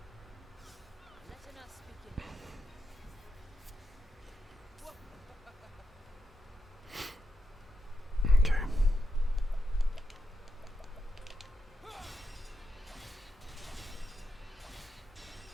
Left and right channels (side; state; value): both; normal; correlation 0.85